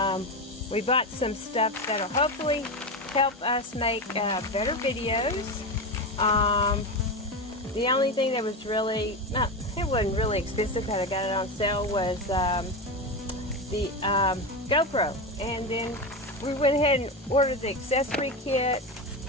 we bought some stuff that'll hopefully help us make better videos. The only thing that was really, it wasn't really expensive, but I got it on sale, was the GoPro. And then we went ahead and ordered the accessory kit.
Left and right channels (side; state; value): both; normal; correlation 0.18